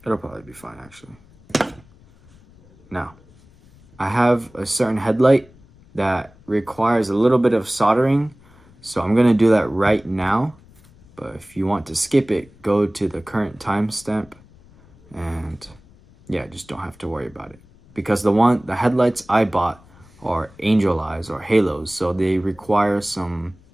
It'll probably be fine, actually. Now, I have a certain headlight that requires a little bit of soldering, so I'm gonna do that right now. But if you want to skip it, go to the current timestamp, and yeah, just don't have to worry about it. Because the headlights I bought are angel eyes or halos, so they require some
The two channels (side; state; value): left; noise; rumble, 27 dB below the sound